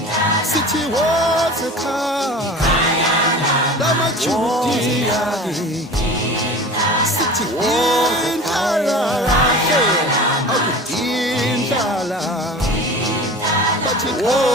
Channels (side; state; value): both; normal; correlation 0.37